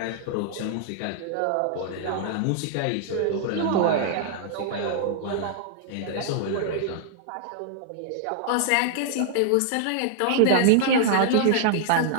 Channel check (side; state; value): both; different; correlation -0.01